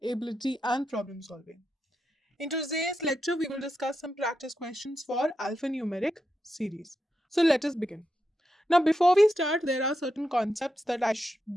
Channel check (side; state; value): both; normal; correlation 0.86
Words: ability and problem solving. In today's lecture, we will discuss some practice questions for alphanumeric series. So let us begin. Now before we start, there are certain concepts